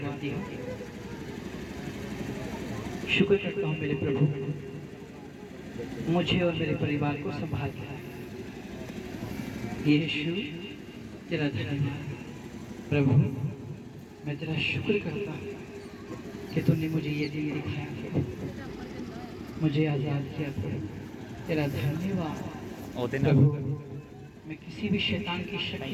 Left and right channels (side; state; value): both; identical; correlation 1.00